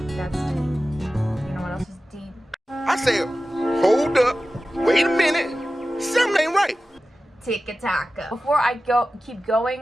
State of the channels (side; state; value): both; normal; correlation 0.95